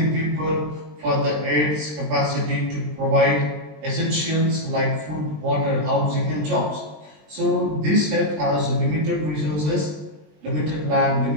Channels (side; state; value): left; late; 20 ms